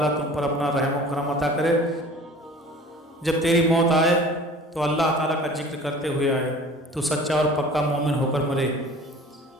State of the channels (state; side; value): normal; both; correlation 0.44